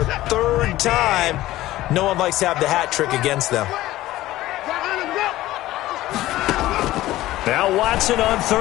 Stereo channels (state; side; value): quieter; right; 16.0 dB